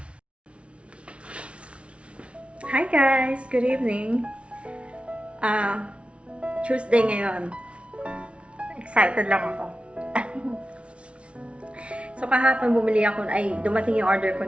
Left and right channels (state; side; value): late; left; 0.060 ms